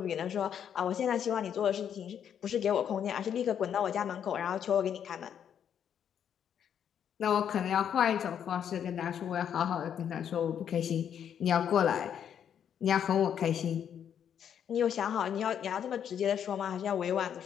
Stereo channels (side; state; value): right; quieter; 8.8 dB